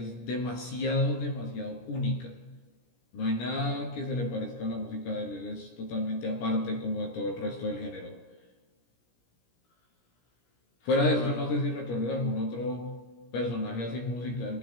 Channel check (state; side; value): late; right; 17 ms